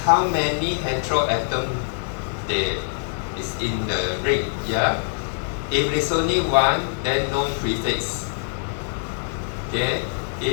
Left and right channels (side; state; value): right; silent; digital silence